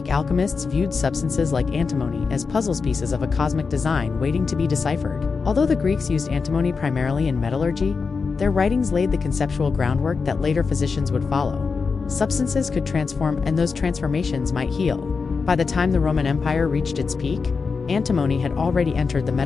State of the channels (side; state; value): right; quieter; 5.0 dB